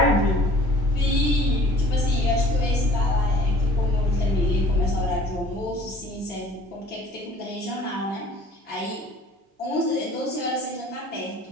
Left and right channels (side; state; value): both; normal; correlation 0.52